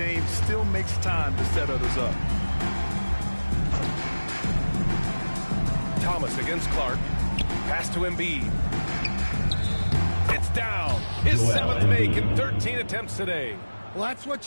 still makes time to set others up. Thomas against Clark. Pass to Embiid. It's down. His 7th make in 13 attempts today. Well, that's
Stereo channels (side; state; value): both; inverted; correlation -1.00